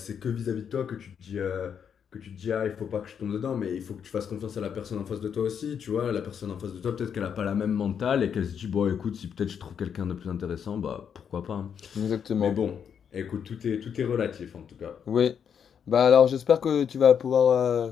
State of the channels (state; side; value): quieter; right; 7.7 dB